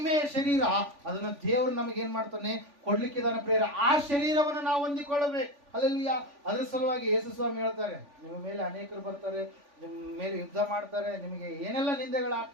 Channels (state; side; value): late; left; 3.5 ms